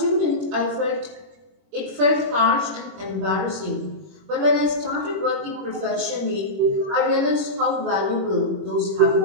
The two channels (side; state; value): left; late; 21 ms